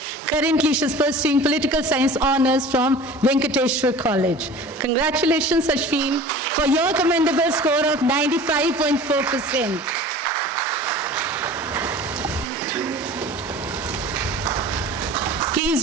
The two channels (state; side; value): normal; both; correlation 0.41